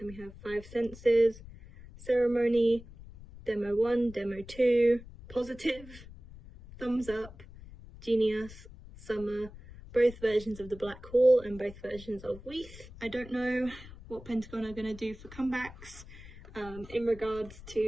we have 5 Senses, Ceremony, Demo 1, Demo 2, Positive, Thumbs Up, Genius, Summer, both versions of the Black Hole and both versions of Weath. I don't know what Pentagon are going to do for comebacks in regards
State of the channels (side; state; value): left; noise; rumble, 17 dB below the sound